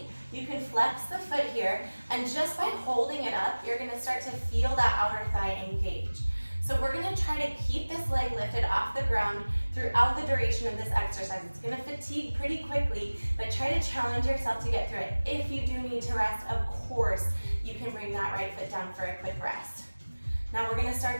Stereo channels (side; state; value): both; inverted; correlation -1.00